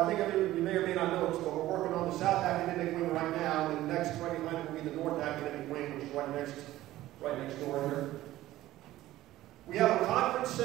think you may or may not know this, but we're working on the South Academic Wing right now, and the next right behind it will be the North Academic Wing, which is right next door here. We have a conference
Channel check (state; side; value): quieter; left; 15.4 dB